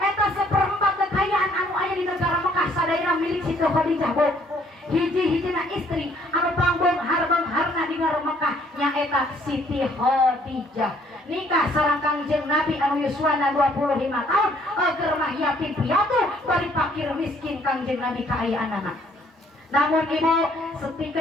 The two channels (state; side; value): normal; both; correlation 0.63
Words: seperempat kekayaan anu aya di negara Mekah sadayana milik Siti Khadijah Bu. Hiji-hijina istri anu pangbeunghar-beungharna di negara Mekah nyaeta Siti Khadijah. Nikah sareng Kangjeng Nabi anu yuswana 25 tahun, keur mah yatim piatu bari fakir miskin Kangjeng Nabi kaayaanana. Namun ibu,